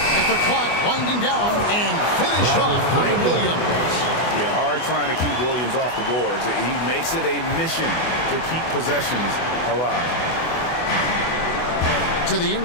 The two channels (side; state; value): right; late; 24 ms